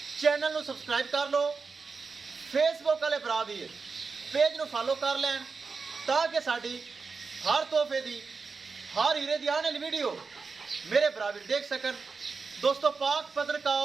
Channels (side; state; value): left; quieter; 4.7 dB